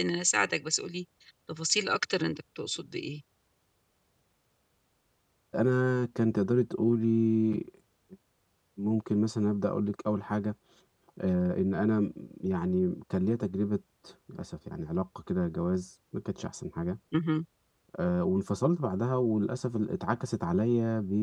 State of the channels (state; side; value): identical; both; correlation 1.00